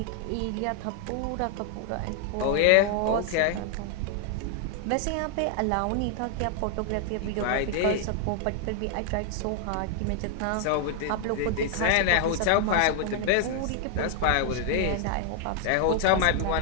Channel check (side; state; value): both; different; correlation 0.00